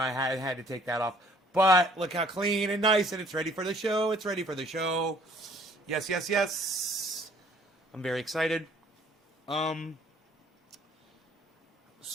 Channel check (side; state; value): both; normal; correlation 0.58